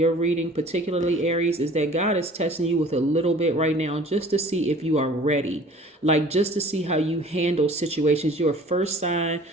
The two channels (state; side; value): normal; both; correlation 0.48